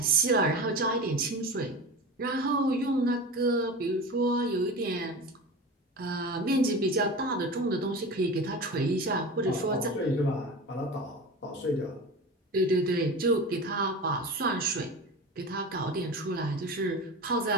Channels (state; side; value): normal; both; correlation 0.30